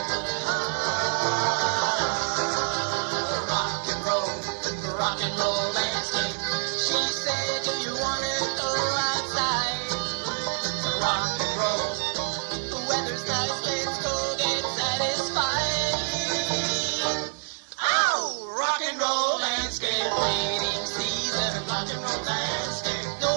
Rock and roll landscape. She said, do you want to go outside? Rock and roll. The weather's nice, let's go get satisfied. Oh, rock and roll landscape. Waiting season, rock and roll landscape.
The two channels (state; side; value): silent; left; digital silence